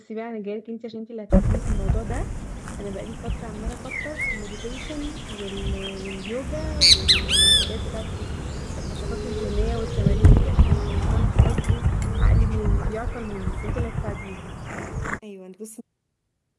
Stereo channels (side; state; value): both; identical; correlation 1.00